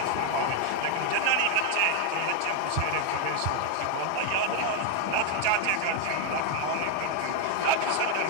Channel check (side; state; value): both; different; correlation 0.01